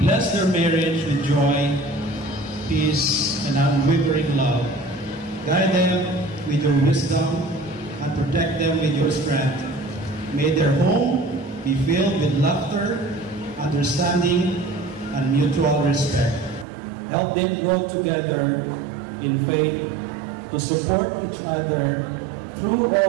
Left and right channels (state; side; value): drops out; left; at 16.7 s